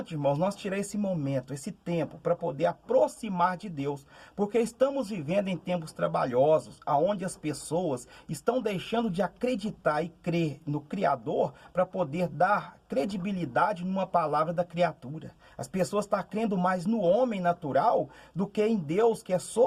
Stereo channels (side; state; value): both; identical; correlation 1.00